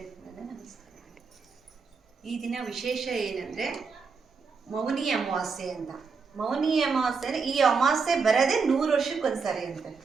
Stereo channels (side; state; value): left; quieter; 5.1 dB